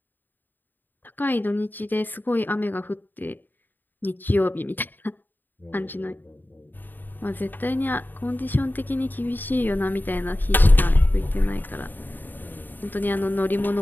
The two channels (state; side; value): late; right; 0.090 ms